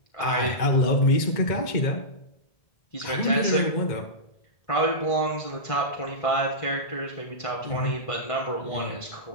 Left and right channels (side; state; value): right; late; 1.7 ms